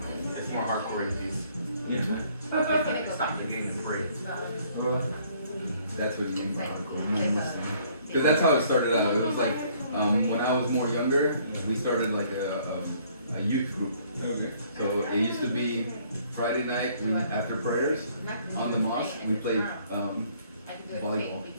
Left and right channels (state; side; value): inverted; both; correlation -0.61